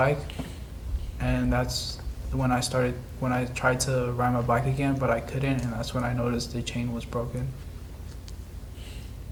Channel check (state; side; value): identical; both; correlation 1.00